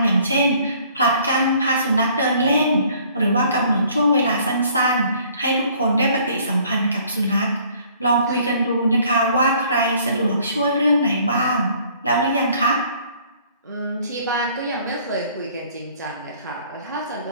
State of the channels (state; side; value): inverted; both; correlation -0.58